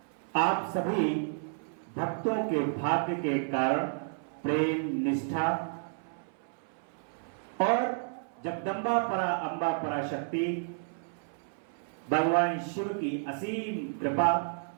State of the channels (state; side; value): silent; left; 57 dB below the other